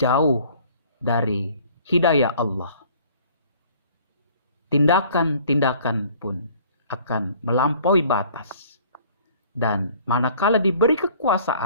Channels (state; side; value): inverted; both; correlation -0.54